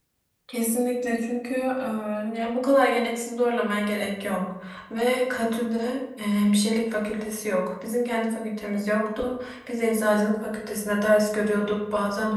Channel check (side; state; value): both; identical; correlation 1.00